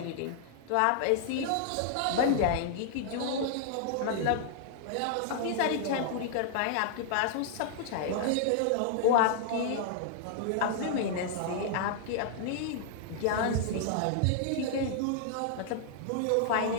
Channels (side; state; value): both; different; correlation -0.01